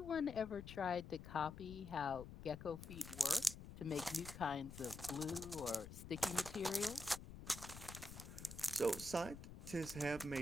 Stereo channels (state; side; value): noise; left; rumble, 12 dB below the sound